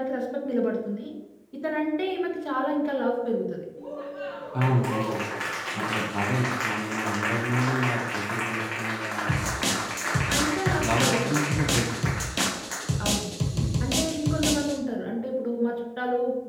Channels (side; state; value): both; identical; correlation 1.00